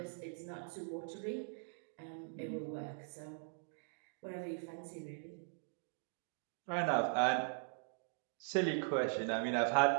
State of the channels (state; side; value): silent; left; digital silence